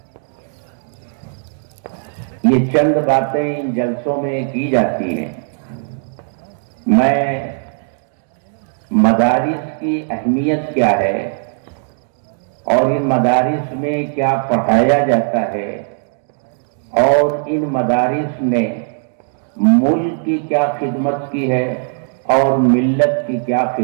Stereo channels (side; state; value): left; silent; digital silence